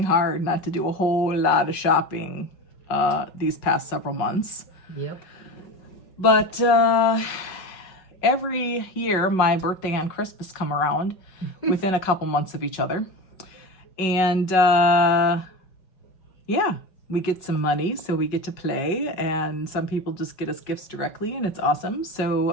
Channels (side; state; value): right; late; 5.4 ms